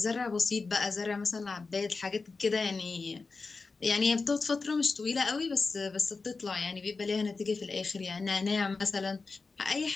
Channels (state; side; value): quieter; right; 4.2 dB